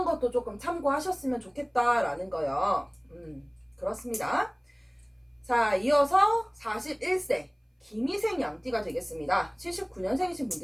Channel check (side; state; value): both; identical; correlation 1.00